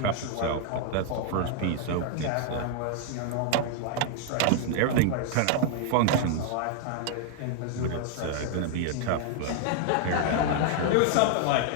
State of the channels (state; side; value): different; both; correlation -0.01